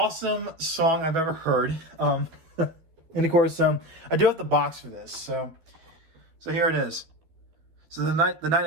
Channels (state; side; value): late; left; 13 ms